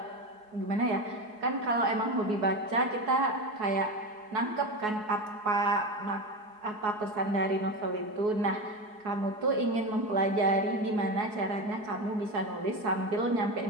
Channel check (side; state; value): left; late; 4.7 ms